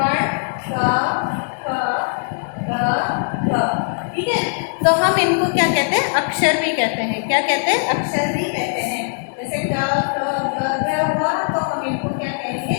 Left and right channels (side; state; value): right; silent; 65 dB below the other